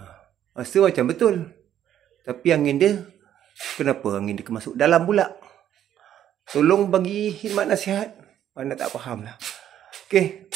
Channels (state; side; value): quieter; left; 10.7 dB